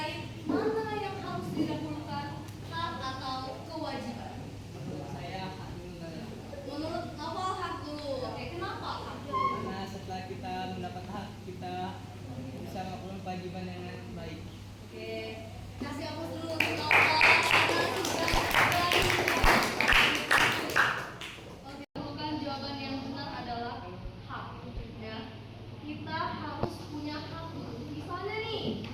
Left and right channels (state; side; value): identical; both; correlation 1.00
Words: mana yang harus didahulukan, hak atau kewajiban. Saya Menurut apa mendapat hak, kita bisa melakukan kewajiban dengan baik. Oke, kasih aku dulu untuk Nova karena sudah berani. Oke, bukan jawaban yang benar adalah hak. Ya, kita harus punya hak. Misalnya nih,